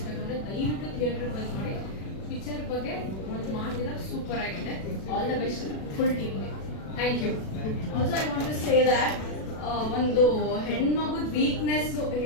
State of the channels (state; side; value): late; right; 37 ms